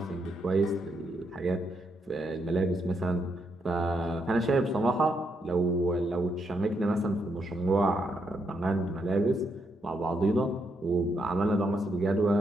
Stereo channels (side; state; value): both; normal; correlation 0.78